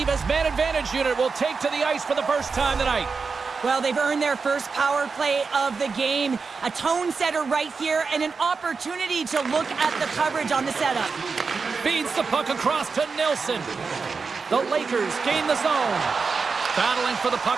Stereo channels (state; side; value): quieter; left; 4.9 dB